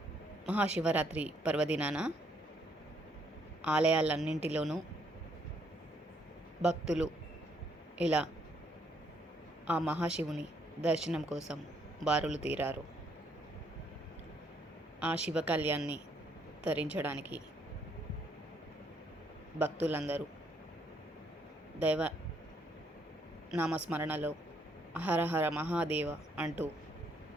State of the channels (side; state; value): both; normal; correlation 0.70